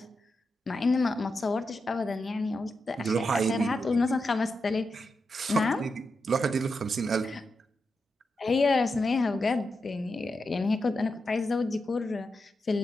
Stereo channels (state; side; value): normal; both; correlation 0.87